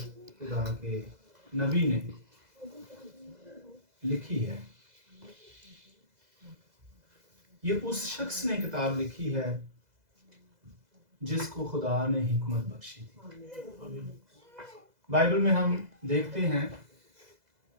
खुदा के नबी ने लिखी है। ये उस शख्स ने किताब लिखी है जिसको खुदा ने हिकमत बख्शी थी। बाइबल में हम देखते हैं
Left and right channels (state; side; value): late; left; 2.0 ms